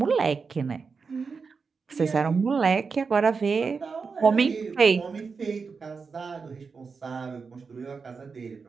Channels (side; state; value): left; quieter; 5.1 dB